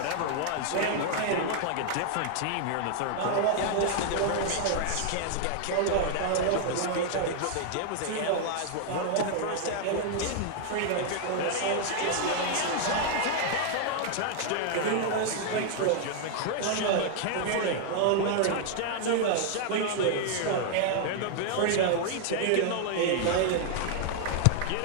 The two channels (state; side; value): different; both; correlation 0.00